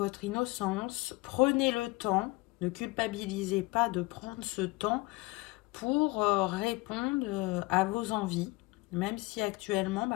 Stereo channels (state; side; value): quieter; right; 23.4 dB